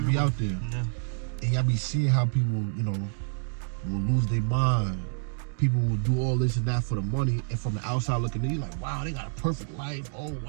out there, and y'all be seeing how people, will lose their mind. People will do all this and that for the money, and from the outside looking in, you're like, wow, they got a perfect life. Oh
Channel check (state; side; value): silent; left; digital silence